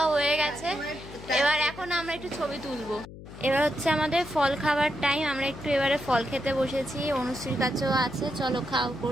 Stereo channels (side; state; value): left; noise; hum, 15 dB below the sound